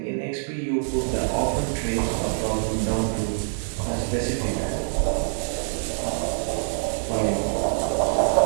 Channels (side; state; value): left; silent; digital silence